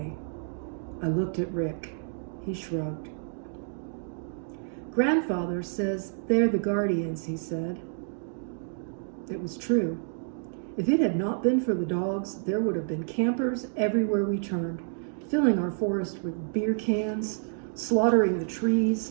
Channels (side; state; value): left; silent; digital silence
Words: I looked at Rick. He shrugged. Grandfather says they're the guardians, he said. It was true. If it had not been for the dogs, there would have been campers everywhere we turned, filling our forest with beer cans, slaughtering the